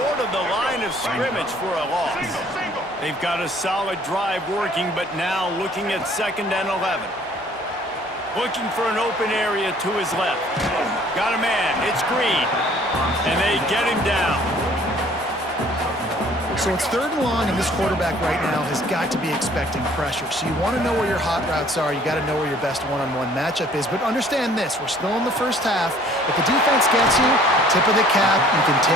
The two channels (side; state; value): both; normal; correlation 0.56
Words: of the line of scrimmage for a loss. They've got a solid drive working, but now looking at 2nd and 11. Looking for an open area to his left. Got a man. It's Green. And they get him down. So it's 3rd and long, and this quarterback right now has got to be expecting pressure. So you want to know where your hot routes are. You got to know where your best one-on-one matchup is. But understand this, we're still in the first half. If the defense gets you, tip of the cap, you can